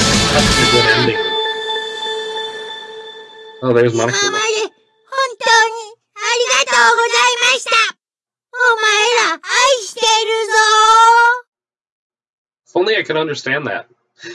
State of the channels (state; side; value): identical; both; correlation 1.00